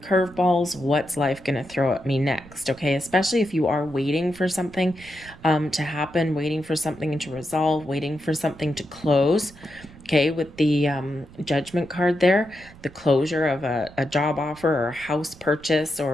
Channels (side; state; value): right; noise; rumble, 21 dB below the sound